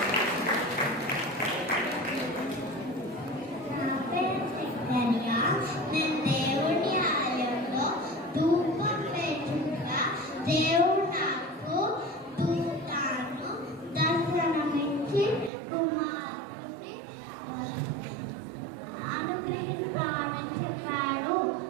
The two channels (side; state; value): left; drops out; at 15.5 s